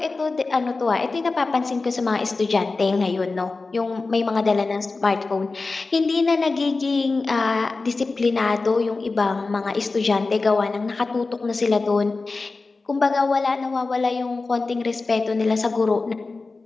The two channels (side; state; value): right; quieter; 3.8 dB